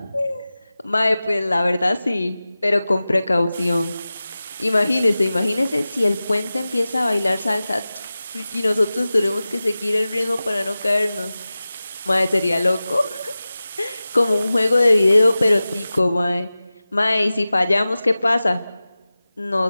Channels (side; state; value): both; inverted; correlation -0.96